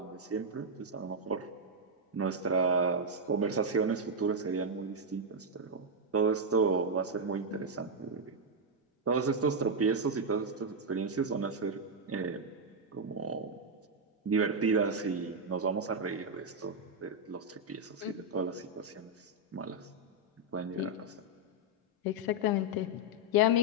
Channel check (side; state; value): both; normal; correlation -0.01